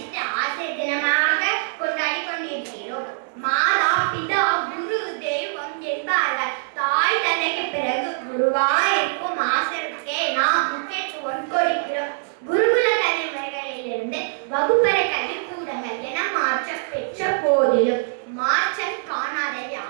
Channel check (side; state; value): left; silent; 63 dB below the other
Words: ஆசிரியர் தினமாக கொண்டாடி கொண்டிருக்கிறோம். மாதா, பிதா, குரு, தெய்வம் என்பார்கள். தாய் தந்தைக்கு பிறகு குருவாயிருக்கும் ஆசிரியருக்கே நாம் முக்கியத்துவம் கொடுக்கிறோம். குருகுல கல்வி முறைகளிலிருந்து வகுப்பறை கல்வி கூடங்கள் என மாற்றம் பெற்ற போதிலும் மாற்றம் காணாத